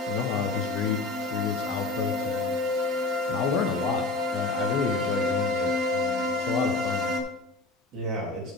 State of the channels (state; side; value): quieter; right; 3.1 dB